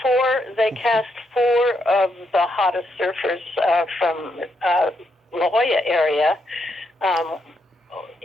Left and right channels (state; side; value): normal; both; correlation 0.79